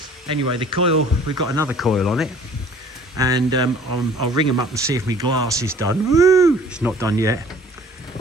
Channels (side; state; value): both; normal; correlation 0.51